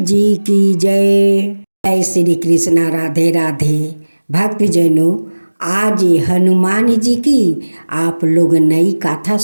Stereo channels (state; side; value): inverted; both; correlation -1.00